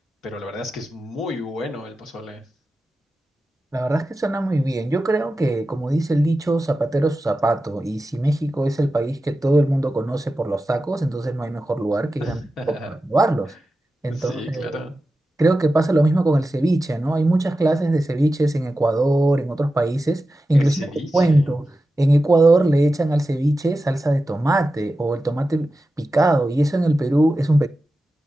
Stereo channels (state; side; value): normal; both; correlation 0.93